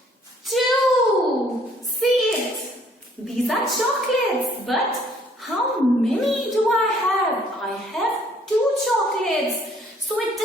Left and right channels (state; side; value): normal; both; correlation 0.62